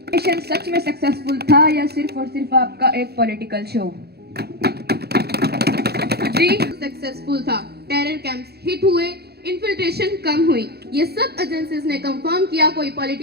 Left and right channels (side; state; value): left; late; 0.47 ms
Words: मिशन सच में सक्सेसफुल था या सिर्फ और सिर्फ आपका एक पॉलिटिकल शो? जी, सक्सेसफुल था। टेरर कैंप्स हिट हुए, इन्फिल्ट्रेशन कम हुई। ये सब एजेंसीज ने कंफर्म किया, कोई